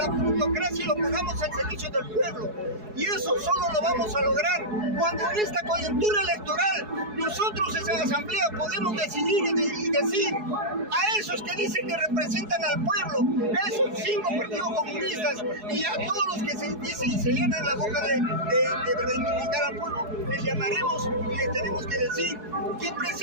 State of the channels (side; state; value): left; late; 4.7 ms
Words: plutocracia y lo pongamos al servicio del pueblo. Y eso solo lo vamos a lograr cuando en esta coyuntura electoral nosotros en la asamblea podemos decidir y decir a esos que dicen que representan al pueblo, a esos 5 partidos comunistas y a todos los que se dicen y se llenan la boca de reivindicar al pueblo, les llamaremos y les tenemos que decir que